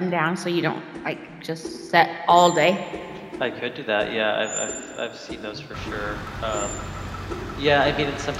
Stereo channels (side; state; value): both; identical; correlation 1.00